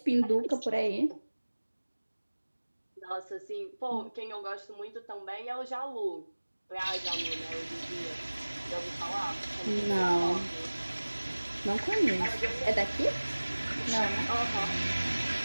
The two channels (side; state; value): both; inverted; correlation -1.00